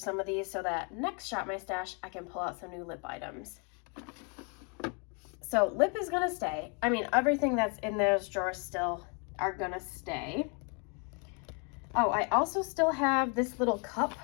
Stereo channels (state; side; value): quieter; right; 35.5 dB